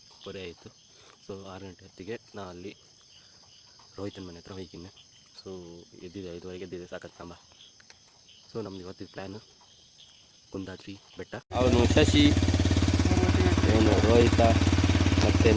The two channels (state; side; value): identical; both; correlation 1.00